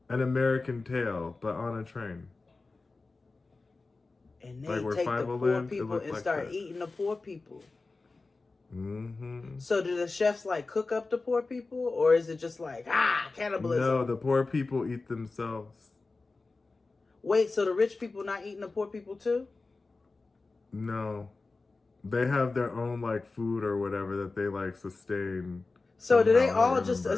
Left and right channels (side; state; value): right; quieter; 3.7 dB